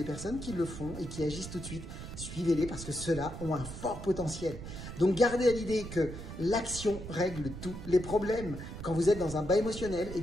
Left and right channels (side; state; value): right; noise; rumble, 9 dB below the sound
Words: personnes qui le font et qui agissent tout de suite, suivez-les parce que ceux-là ont un fort potentiel. Donc gardez à l'idée que l'action règle tous les problèmes. Quand vous êtes dans un bas émotionnel, eh